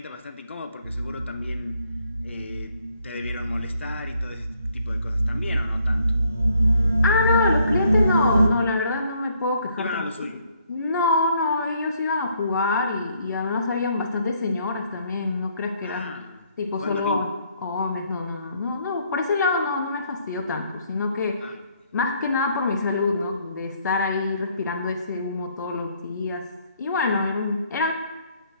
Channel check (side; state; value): both; inverted; correlation -0.68